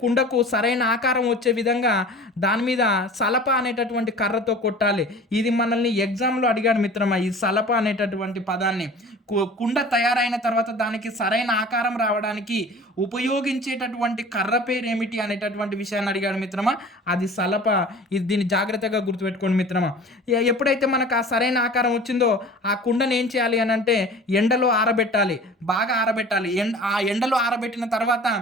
కుండకు సరైన ఆకారం వచ్చే విధంగా దాని మీద సలప అనేటటువంటి కర్రతో కొట్టాలి. ఇది మనల్ని ఎగ్జామ్లో అడిగాడు మిత్రమా, ఈ సలప అనేటటువంటి పదాన్ని. కుండ తయారైన తర్వాత దానికి సరైన ఆకారం రావడానికి ఉపయోగించేటటువంటి కర్ర పేరు ఏమిటి అనేటటువంటి విషయాన్ని అడిగాడు మిత్రమా, అది సలప. దీన్ని జాగ్రత్తగా గుర్తుపెట్టుకోండి మిత్రమా. ఎప్పుడైతే మనకు ఆ సరైన ఆకారం వచ్చిందో ఆ కుండను ఏం చేయాలి అని అంటే ఎండలో ఆరబెట్టాలి, బాగా ఆరబెట్టాలి. ఆ ఎండలో ఆరబెట్టిన తర్వాత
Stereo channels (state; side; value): normal; both; correlation 0.42